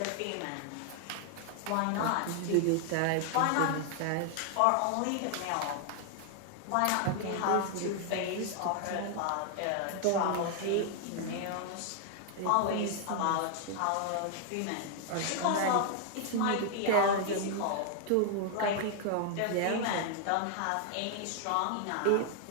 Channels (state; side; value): different; both; correlation 0.00